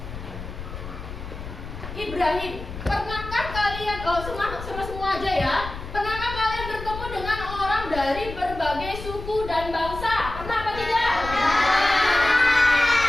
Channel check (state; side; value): noise; left; rumble, 10 dB below the sound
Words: Ibrahim. Pernahkah kalian, semua aja ya, pernahkah kalian bertemu dengan orang dari berbagai suku dan bangsa? Pernah apa tidak?